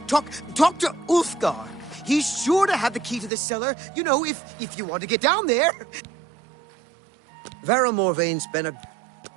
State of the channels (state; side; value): drops out; left; at 3.3 s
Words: Talk to Ulfgar. He's sure to have the key to the cellar, you know, if you want to get down there. Vera Morvain's been a...